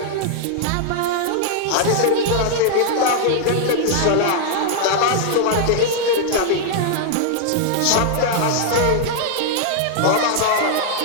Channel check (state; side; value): different; both; correlation -0.01